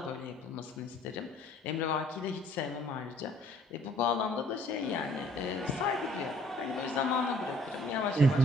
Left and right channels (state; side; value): normal; both; correlation 0.59